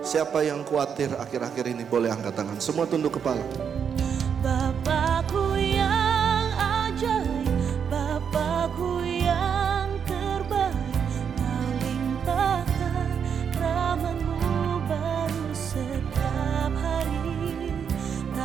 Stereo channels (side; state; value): left; quieter; 7.3 dB